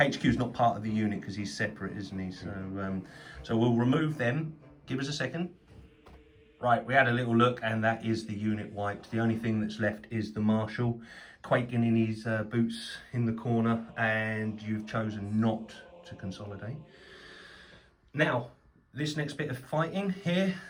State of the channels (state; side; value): identical; both; correlation 1.00